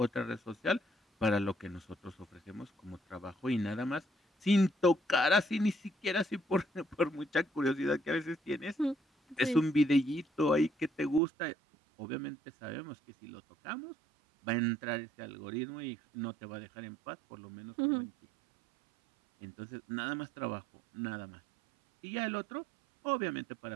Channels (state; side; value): drops out; left; at 11.2 s